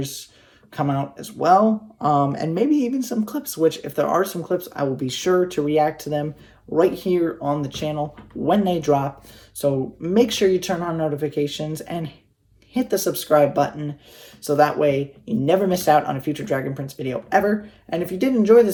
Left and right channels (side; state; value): both; identical; correlation 1.00